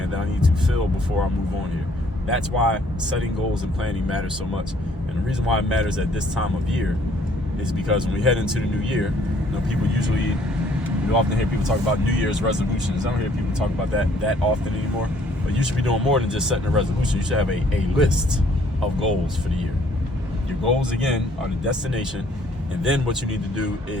that I need to fill before I move on here. That's why setting goals and planning matters so much. And the reason why it matters at this time of year is because when we head into the new year, you know, you often hear people talk about New Year's resolutions. I don't hear people talk about that often anymore. But you should be doing more than just setting a resolution. You should have a list of goals for the year. Your goals, again, are the destination. And then what you need to do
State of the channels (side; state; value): both; normal; correlation 0.62